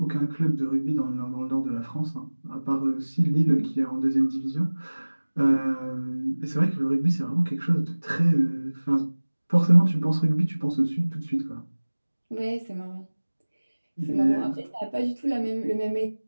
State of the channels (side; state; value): both; inverted; correlation -1.00